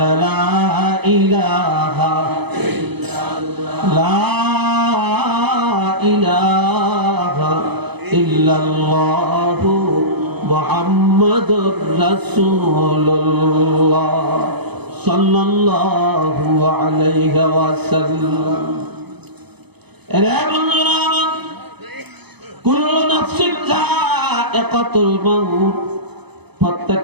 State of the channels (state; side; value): late; left; 0.98 ms